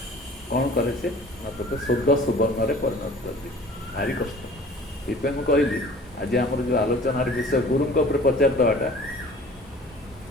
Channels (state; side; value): normal; both; correlation 0.47